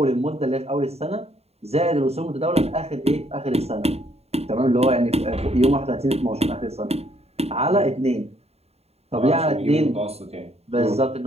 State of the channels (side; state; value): left; late; 0.30 ms